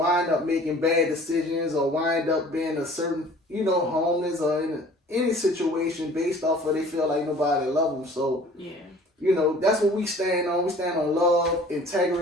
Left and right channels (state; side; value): normal; both; correlation 0.49